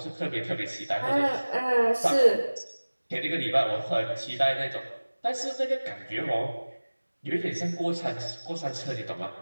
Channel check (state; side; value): inverted; both; correlation -1.00